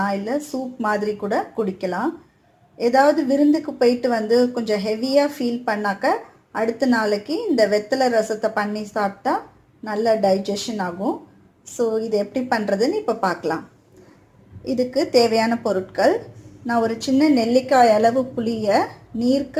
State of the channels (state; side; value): identical; both; correlation 1.00